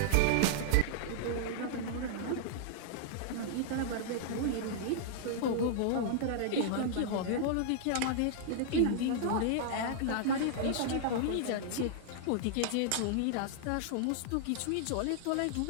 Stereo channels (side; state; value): both; different; correlation -0.01